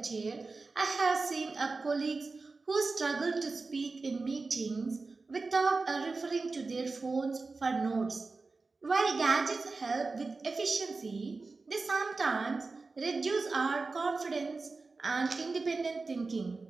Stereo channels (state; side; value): quieter; left; 3.9 dB